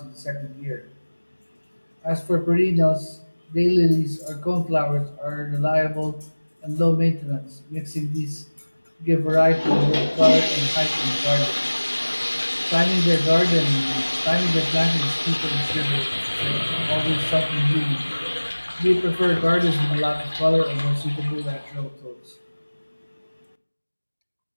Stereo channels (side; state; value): both; inverted; correlation -1.00